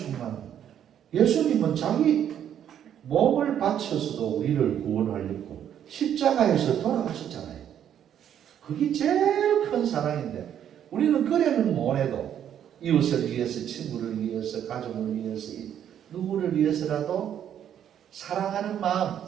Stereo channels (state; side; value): quieter; left; 9.7 dB